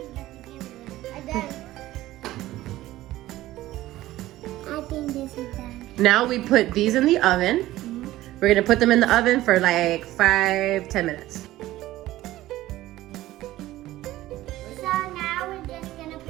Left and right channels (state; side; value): quieter; left; 15.8 dB